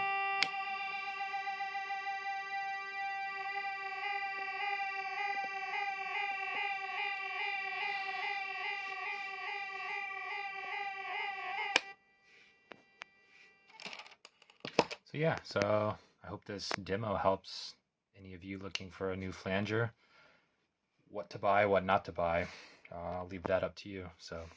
So yeah, so I hope this demo helps any of you looking for a new flanger. What to buy, what not to buy, I'll leave that up to you. So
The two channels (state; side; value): identical; both; correlation 1.00